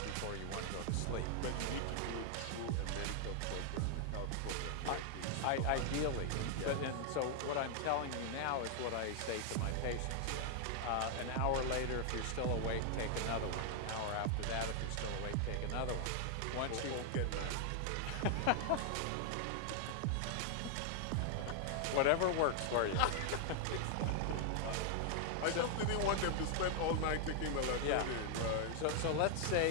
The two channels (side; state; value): both; different; correlation 0.00